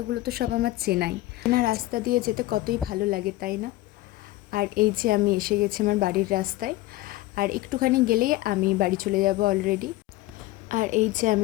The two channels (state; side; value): quieter; right; 17.4 dB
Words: তো সব আমার চেনাই না, রাস্তা দিয়ে যেতে কতই ভালো লাগে, তাই না? আর এই যে আমি এসে গেছি আমার বাড়ির রাস্তায়। আর একটুখানি গেলেই আমি বাড়ি চলে যাব অলরেডি। আর এই যে